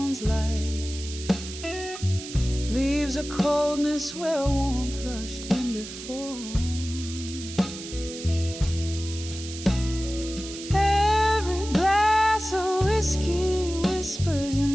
light, leaves a coldness where warmth rushed in before. Every glass of whiskey whispers your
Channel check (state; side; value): noise; right; hiss, 11 dB below the sound